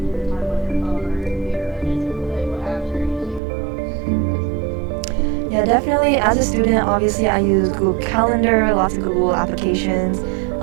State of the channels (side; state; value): left; drops out; at 3.4 s